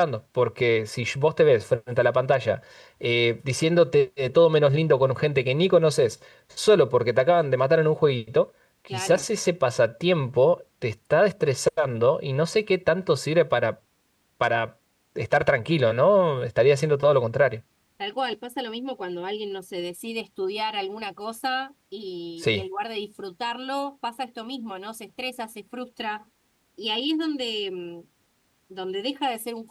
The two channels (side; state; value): both; identical; correlation 1.00